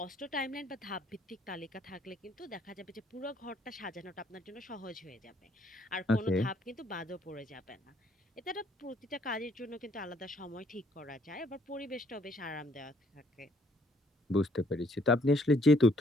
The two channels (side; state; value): both; normal; correlation 0.66